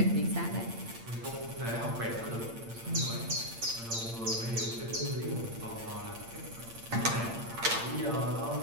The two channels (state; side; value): late; left; 8.7 ms